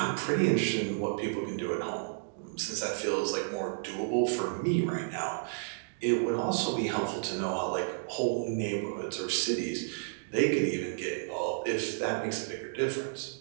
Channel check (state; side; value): silent; left; digital silence